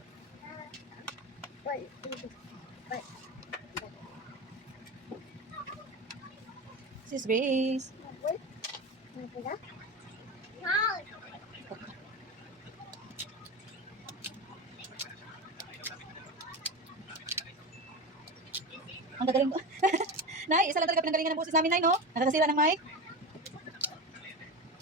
Sis Grace. Ang gagaling ko. Nay, isa lang talaga pinanggalingan ng boses namin, Nay, no? Nakakasira ng mic.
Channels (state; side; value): normal; both; correlation 0.23